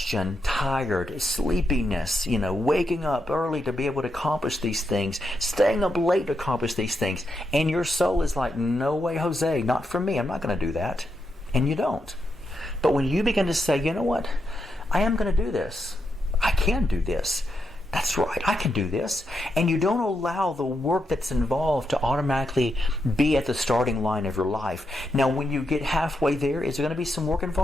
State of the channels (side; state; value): both; normal; correlation 0.83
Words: tired, sleepiness, waking up early to be able to accomplish these things, staying up late to accomplish these things. And your soul is like, no way, Jose, not for me. I'm not going to do that. And you don't. But when you begin to say, you know what? I am going to do this. I can do this. That's right, I can do this. And you don't allow the work that's involved to automatically be at the starting line of your life. Now, when you get halfway there, is there going to be some work